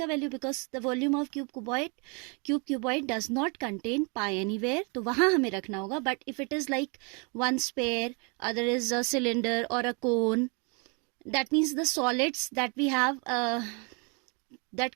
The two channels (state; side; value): quieter; left; 33.7 dB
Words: value, because the volume of cuboid does not contain pi anywhere, तो वहां हमें रखना होगा. But if it is like one sphere, other is a cylinder और a cone, that means the solids that we have that